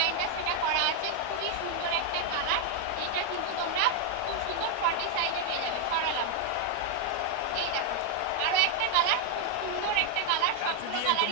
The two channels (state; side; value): different; both; correlation 0.00